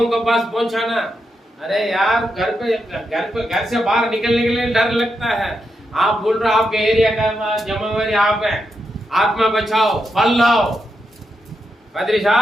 को पास पहुंचाना। अरे यार, घर से बाहर निकलने के लिए डर लगता है। आप बोल रहे आपके एरिया का जिम्मेवारी आप है, आत्मा बचाओ, फल लाओ। पादरी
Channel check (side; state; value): both; normal; correlation 0.85